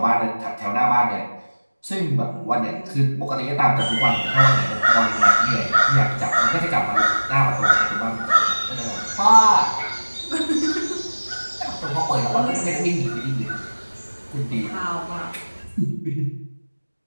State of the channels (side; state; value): both; inverted; correlation -1.00